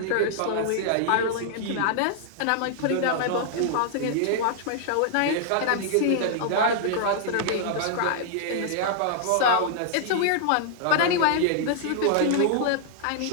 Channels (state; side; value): different; both; correlation -0.01